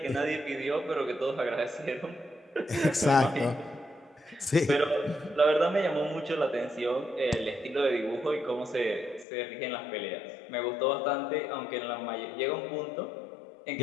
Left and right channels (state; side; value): drops out; right; at 9.2 s